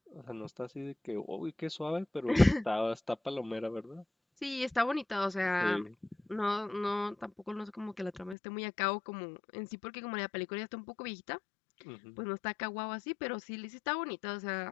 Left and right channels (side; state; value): right; drops out; at 8.3 s